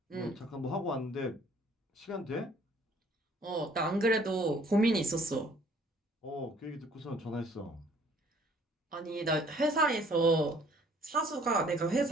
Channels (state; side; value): normal; both; correlation 0.58